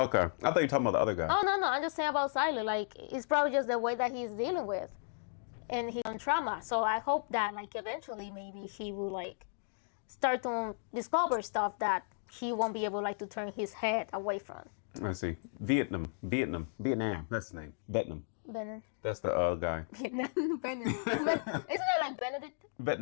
I thought you were talking about the other guy. Oh no, I'm just saying about Xylo. Like, it's probably just the way that he's dealing with, and his own trauma. So I hope that eventually maybe he will start to discover stuff that he won't be able to turn his head away from. Let's see, Vietnam. That's the name. Vietnam. Benin. That's the guy. Benin. Isn't it like Benedict?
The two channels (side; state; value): right; silent; digital silence